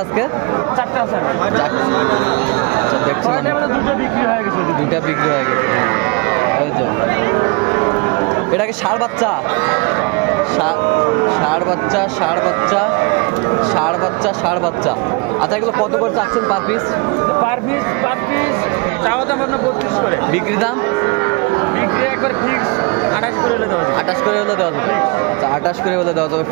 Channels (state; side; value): quieter; left; 29.2 dB